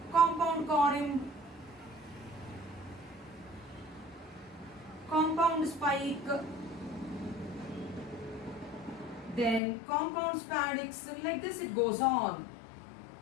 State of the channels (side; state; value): right; drops out; at 9.6 s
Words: Compound corymb, compound spike, Then compound spadix, like this it goes on.